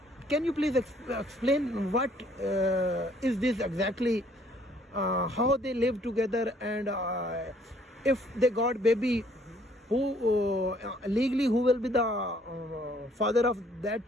Can you please explain what is this exactly? How they live together, and if they got baby, who legally who will be the father of that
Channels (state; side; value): normal; both; correlation 0.62